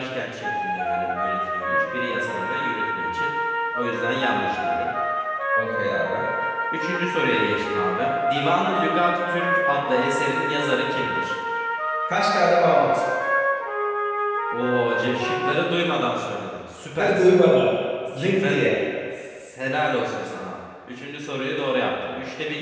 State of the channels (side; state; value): both; identical; correlation 1.00